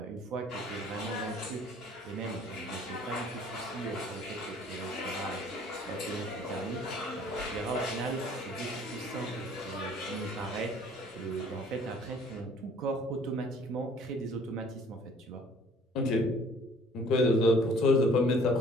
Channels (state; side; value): normal; both; correlation 0.55